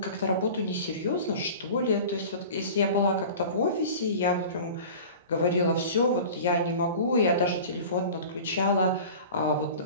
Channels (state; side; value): inverted; both; correlation -0.38